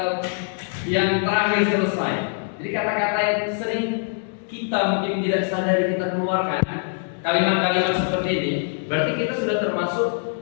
yang terakhir selesai. Jadi kata-kata yang sering kita mungkin tidak sadari kita keluarkan, kalimat-kalimat seperti ini, berarti kita sudah termasuk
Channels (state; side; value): silent; right; digital silence